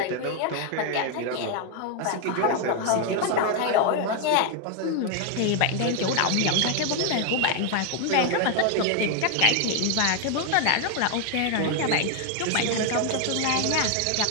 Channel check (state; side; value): different; both; correlation 0.01